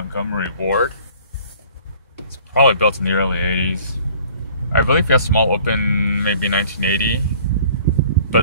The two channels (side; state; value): both; inverted; correlation -0.52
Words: ward. It's probably built in the early 80s. I believe Fiesta Mall opened maybe 1980,